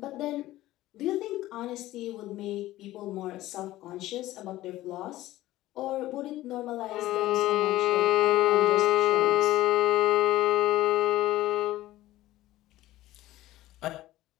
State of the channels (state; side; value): quieter; right; 15.8 dB